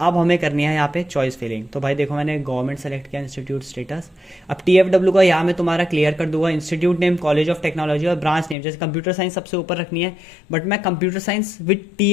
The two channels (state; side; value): drops out; right; at 8.6 s